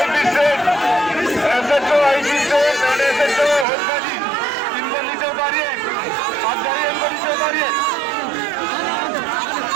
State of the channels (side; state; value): left; drops out; at 3.7 s